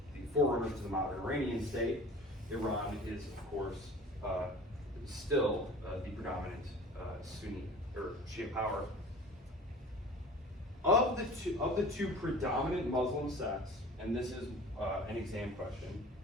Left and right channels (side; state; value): both; normal; correlation 0.42